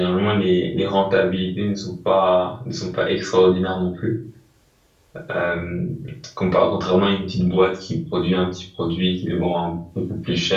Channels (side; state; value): both; identical; correlation 1.00